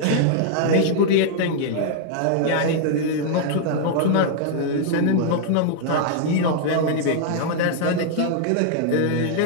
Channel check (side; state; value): both; different; correlation -0.01